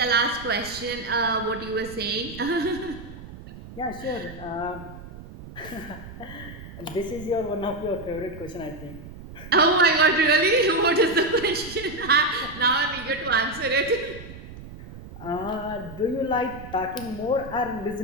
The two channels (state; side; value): noise; right; rumble, 14 dB below the sound